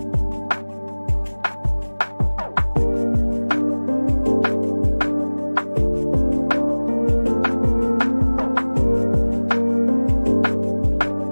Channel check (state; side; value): inverted; both; correlation -1.00